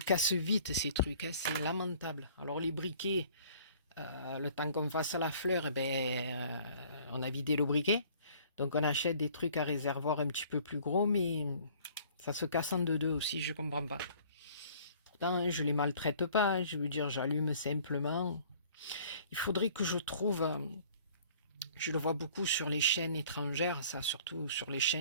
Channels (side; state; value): both; inverted; correlation -0.54